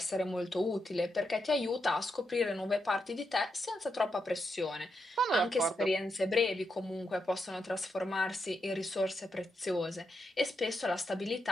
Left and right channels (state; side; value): normal; both; correlation 0.84